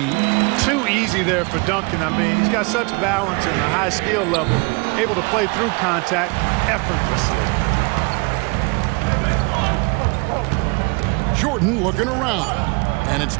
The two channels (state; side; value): quieter; left; 29.7 dB